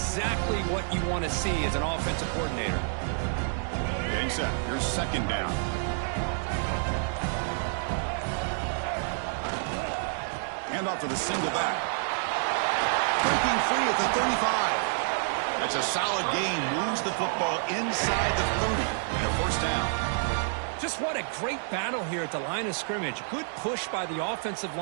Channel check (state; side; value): silent; left; digital silence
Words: what you want to see as an offensive coordinator. Getting set. Here's 2nd down. Hand off to the single back. Breaking free at the 35. That's a solid gain. Moves the football inside the 30 and a first down. Just what a great battle here at the line of scrimmage. Good push by the offensive